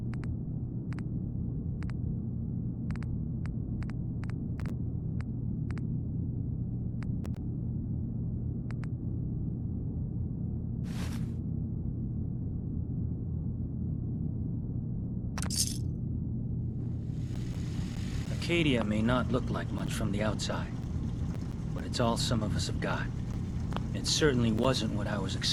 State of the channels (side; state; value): both; identical; correlation 1.00